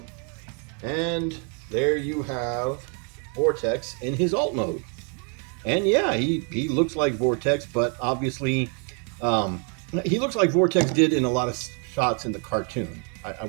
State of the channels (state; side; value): quieter; left; 39.5 dB